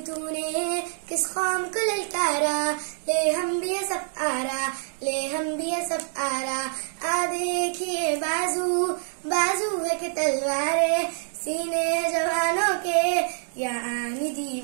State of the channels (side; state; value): left; silent; digital silence